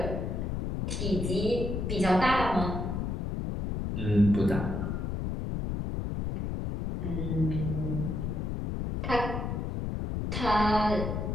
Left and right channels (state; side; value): noise; left; rumble, 2 dB below the sound